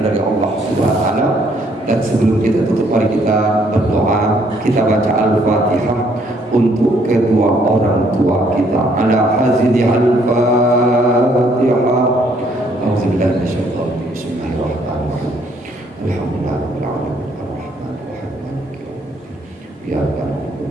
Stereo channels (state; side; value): normal; both; correlation 0.66